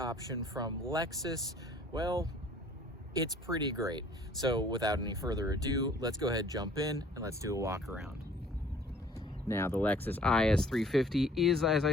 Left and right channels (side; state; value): both; normal; correlation 0.54